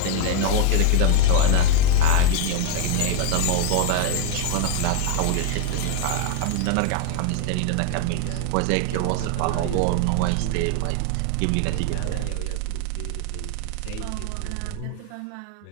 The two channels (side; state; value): both; different; correlation 0.01